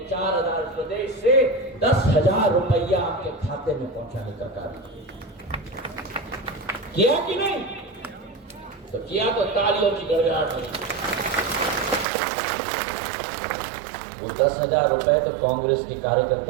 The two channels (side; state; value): left; drops out; at 12.1 s